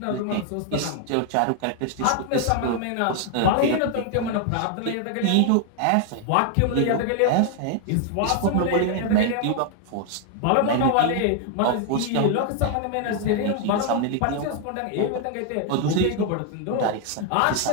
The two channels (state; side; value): different; both; correlation 0.00